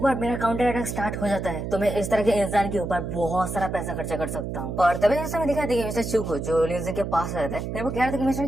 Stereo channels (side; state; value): right; noise; hum, 5 dB below the sound